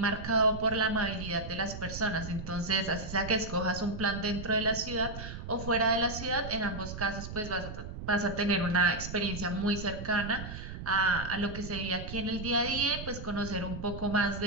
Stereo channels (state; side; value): noise; right; rumble, 9 dB below the sound